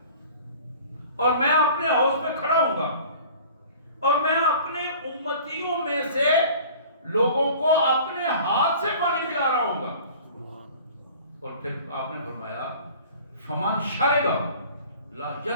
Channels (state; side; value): inverted; both; correlation -0.45